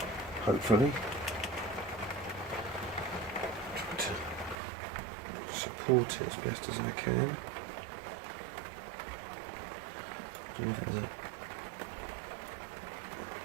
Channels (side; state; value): left; drops out; at 4.5 s